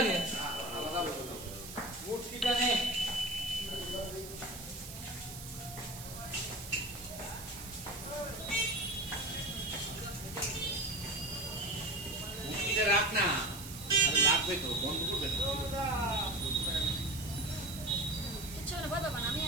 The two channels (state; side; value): noise; right; hiss, 12 dB below the sound